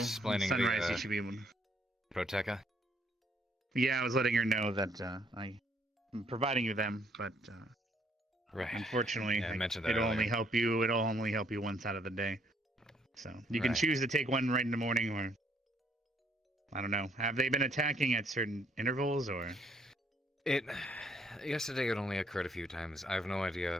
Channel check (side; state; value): both; normal; correlation 0.67